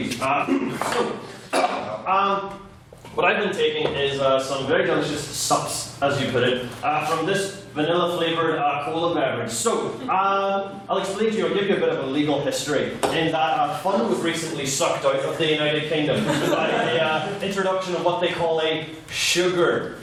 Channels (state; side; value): identical; both; correlation 1.00